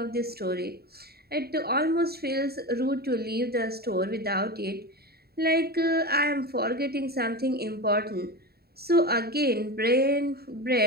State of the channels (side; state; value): left; late; 0.46 ms